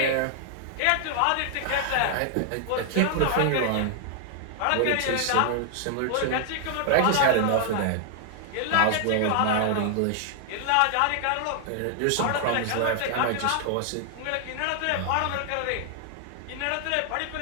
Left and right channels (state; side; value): different; both; correlation 0.00